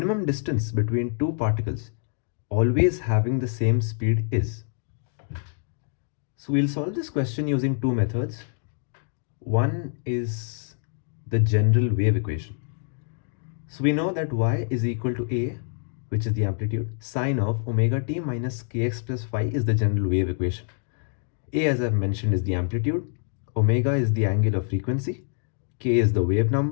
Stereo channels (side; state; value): right; silent; digital silence